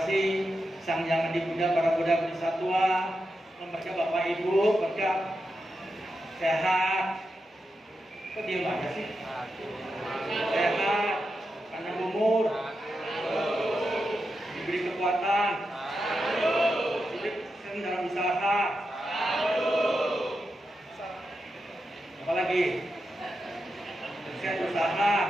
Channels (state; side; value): normal; both; correlation 0.88